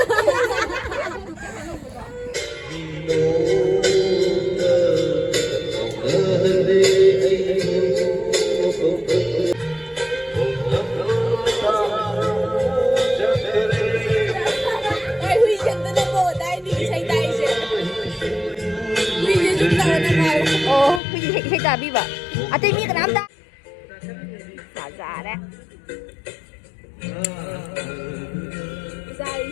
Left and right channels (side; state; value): right; drops out; at 21.0 s